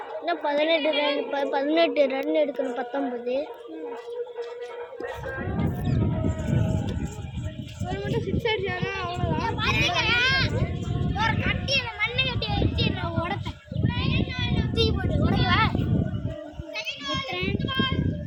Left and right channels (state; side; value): identical; both; correlation 1.00